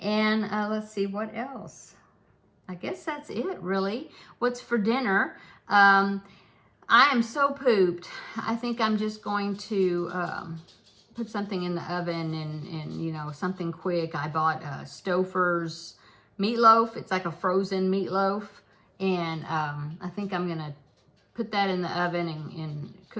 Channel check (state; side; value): identical; both; correlation 1.00